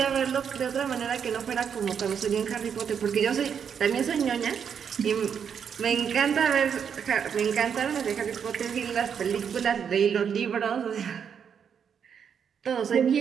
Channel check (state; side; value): quieter; left; 7.5 dB